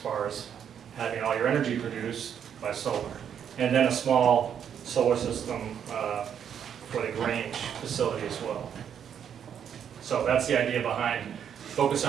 as having all your energy produced by solar. And then a small solar system for the Grange facility as well. So that's the idea behind focus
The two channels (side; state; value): left; quieter; 8.5 dB